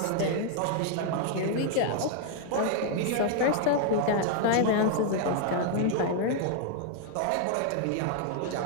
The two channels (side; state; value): both; different; correlation -0.01